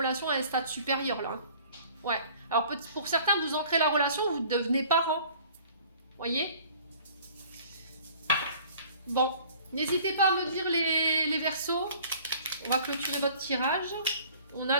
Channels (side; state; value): both; inverted; correlation -0.51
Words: à un stade supérieur, là. Hein. Ouais. Alors, pour certains, vous ancrez la relation, vous devenez parents. Voyez? Bon. N'hésitez pas à me dire les Verseaux. On va clôturer votre tirage. On a